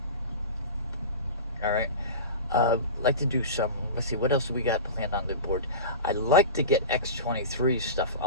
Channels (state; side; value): inverted; both; correlation -0.30